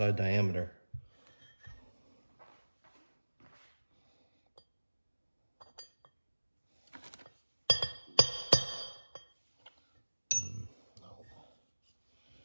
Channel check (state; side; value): inverted; both; correlation -1.00